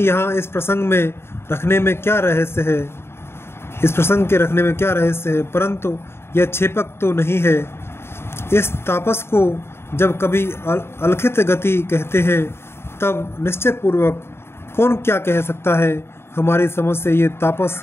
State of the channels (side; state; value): right; late; 0.12 ms